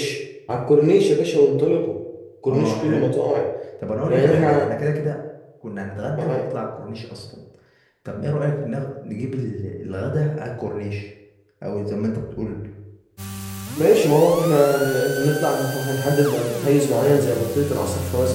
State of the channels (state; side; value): identical; both; correlation 1.00